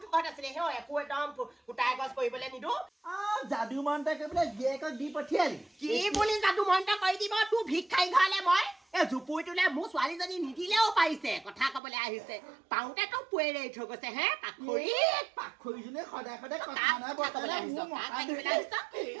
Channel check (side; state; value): left; drops out; at 11.8 s